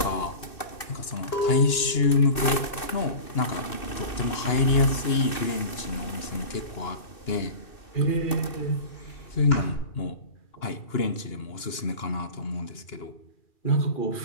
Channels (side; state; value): right; late; 2.6 ms